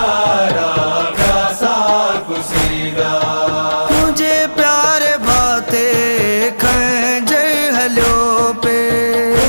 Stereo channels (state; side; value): inverted; both; correlation -1.00